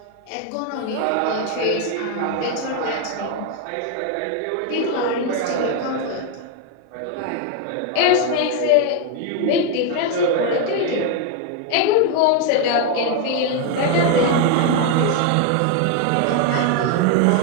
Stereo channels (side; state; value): both; different; correlation 0.01